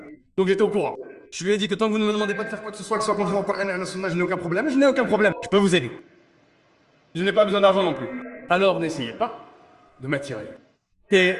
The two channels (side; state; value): both; identical; correlation 1.00